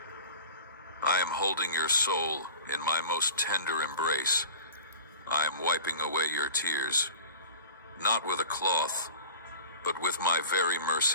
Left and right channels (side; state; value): both; inverted; correlation -0.39